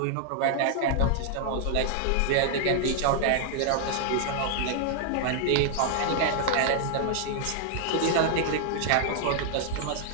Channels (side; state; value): both; different; correlation 0.00